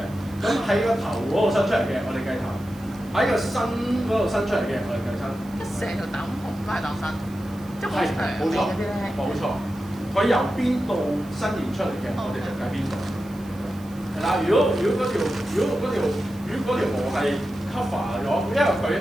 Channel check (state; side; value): noise; right; hiss, 24 dB below the sound